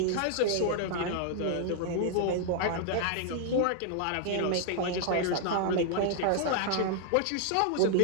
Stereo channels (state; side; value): different; both; correlation -0.01